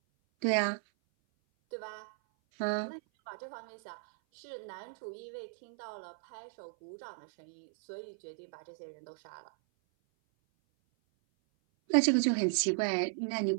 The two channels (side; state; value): left; silent; 54 dB below the other